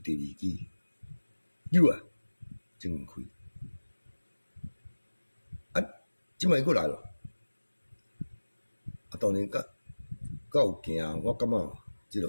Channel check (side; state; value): both; inverted; correlation -1.00